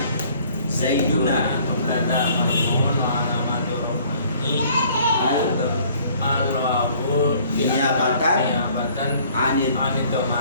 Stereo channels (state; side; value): inverted; both; correlation -0.57